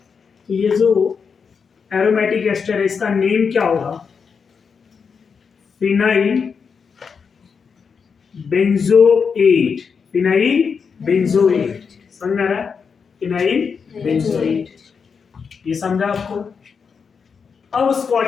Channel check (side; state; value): right; quieter; 5.9 dB